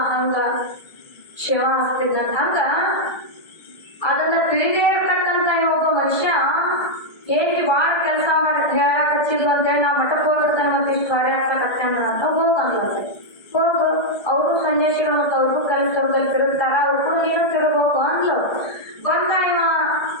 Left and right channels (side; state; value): right; late; 1.8 ms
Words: ಹಂಗ ಶಿವ ಹಸ್ತಿದ್ದಂತ. ಹಂಗ ಅದನ್ನ ತಿಳಿದೇ ಇರ್ತಕ್ಕಂತ ಒಬ್ಬ ಮನುಷ್ಯ ಹೇಗೆ ಬಾಳ ಕೆಲಸ ಮಾಡಿ ಹೇಳಕ್ ಹಚ್ಚಿದ್ಲು ಅಂತೇಳಿ ನಾ ಮಠಕ್ಕೆ ಹೋಗಿರ್ತಾನೆ ಮತ್ತೆ ಇಷ್ಟು ಕಾರ್ಯ ಹಚ್ಚಕತ್ತೇನ ಅಂತ ಹೋಗಂದ್ಲ. ಹೋಗು, ಅವರು ಸನ್ಯಾಸಿಗಳು ಮತ್ತು ಅವ್ರಿಗೂ ಕೆಲಸದಲ್ಲಿ ತಿರುಗ್ತಾರ, ಅವ್ರಿಗೂ ನೀನು ತಿರುಗೋಗು ಅಂದ್ಲು. ಬಂದ ಇವ